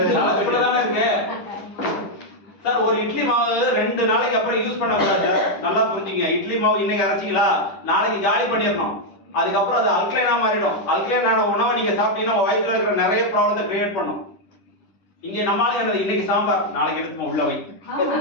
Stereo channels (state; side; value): late; right; 10 ms